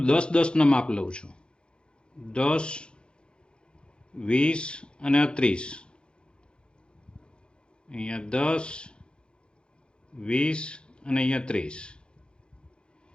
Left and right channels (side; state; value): right; late; 0.053 ms